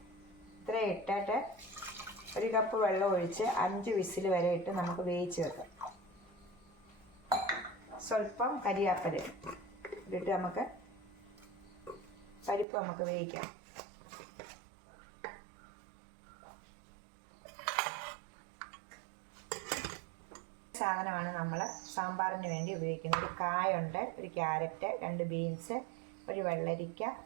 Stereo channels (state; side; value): drops out; left; at 12.7 s